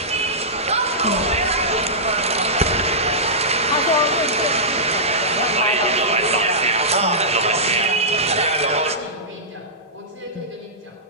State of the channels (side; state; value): both; normal; correlation -0.16